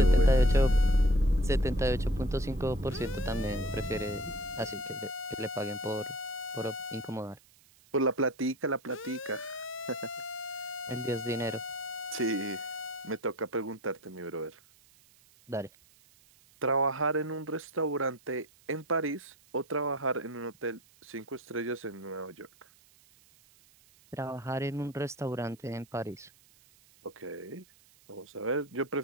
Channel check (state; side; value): noise; right; hiss, 28 dB below the sound